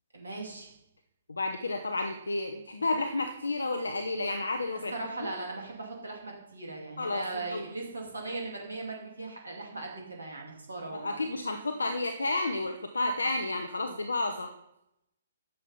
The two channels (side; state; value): both; inverted; correlation -0.84